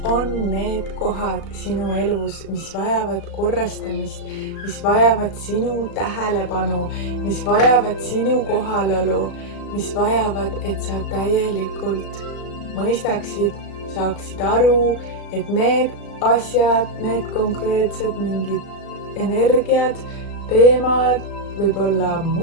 on need kohad sinu elus, mis vajavad korrastamist, mis vajavad sinu tähelepanu, mis vajavad sinu kohalolu, mis vajavad, et sa täielikult mõistaksid, saaksid aru, et need asjad, need konkreetsed mingid energiad, teemad, võib-olla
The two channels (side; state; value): right; late; 36 ms